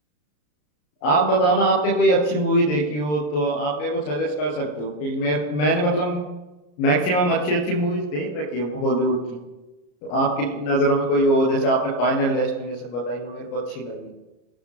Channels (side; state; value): right; late; 34 ms